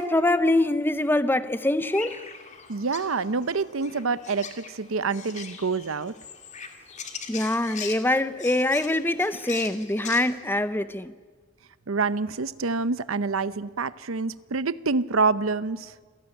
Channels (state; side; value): normal; both; correlation 0.38